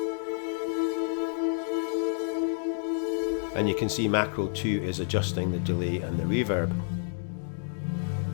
And you can see macro 2 is adjusting the delay and the reverb.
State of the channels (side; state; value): right; silent; digital silence